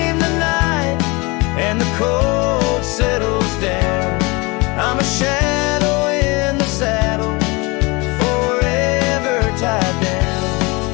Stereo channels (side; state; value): right; quieter; 26.2 dB